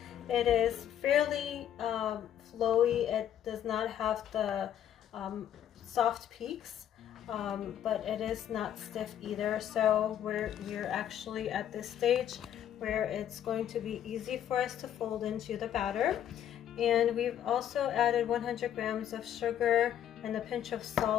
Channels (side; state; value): right; quieter; 10.4 dB